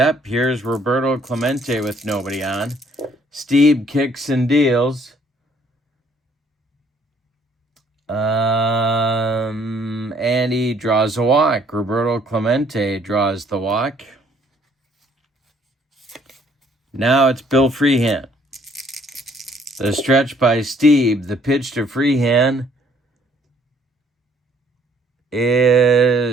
Here's Roberto Clemente with nobody on. Stieb kicks and deals. And he draws a walk. Roberto Clemente draws the walk. Now it's Bill Freehand. The stretch by Stieb. The pitch to Freehand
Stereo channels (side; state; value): both; normal; correlation 0.63